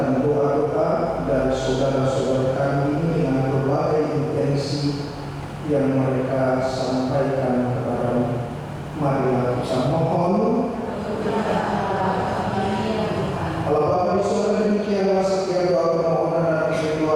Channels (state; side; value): identical; both; correlation 1.00